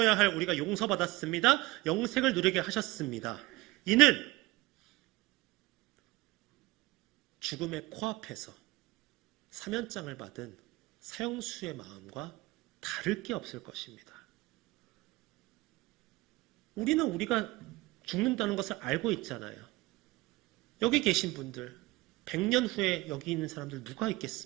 할 우리가 용서받았습니다. 영생을 누리게 하셨습니다. 이는 죽음의 코앞에서 사면장을 받은 사형수의 마음과 다를 게 없을 것입니다. 우리는 우리가 죽는다는 것을 알고 있잖아요. 여기 계신 분들, 100년 후에 여기 있는 사람들 누가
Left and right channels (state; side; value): quieter; left; 20.3 dB